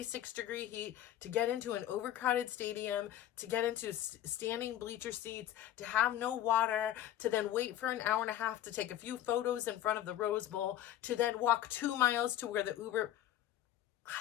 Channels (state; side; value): quieter; right; 12.2 dB